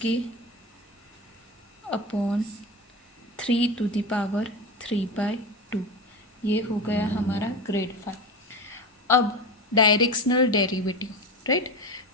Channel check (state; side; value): normal; both; correlation 0.24